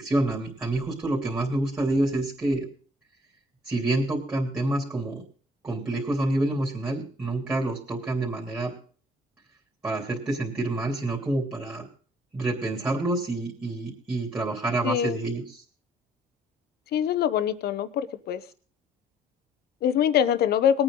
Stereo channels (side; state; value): both; normal; correlation 0.60